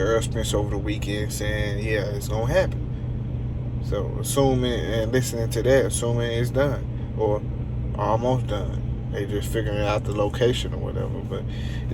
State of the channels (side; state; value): both; identical; correlation 1.00